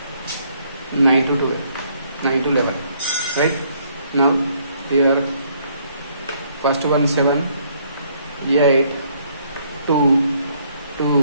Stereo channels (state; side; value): inverted; both; correlation -0.67